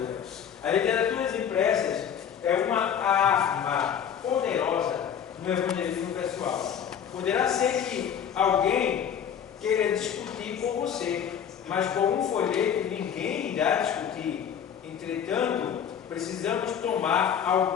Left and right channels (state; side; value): quieter; right; 8.4 dB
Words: A literatura impressas é uma arma poderosa no evangelismo pessoal. Poderá ser que alguém queira discutir com você, mas com um folheto ninguém irá discutir. Entretanto, precisamos tomar